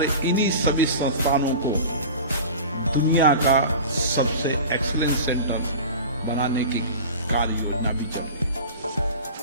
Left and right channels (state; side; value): inverted; both; correlation -0.35